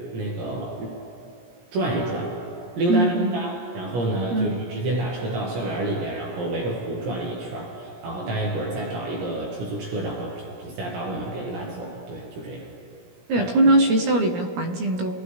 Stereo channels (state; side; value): late; left; 17 ms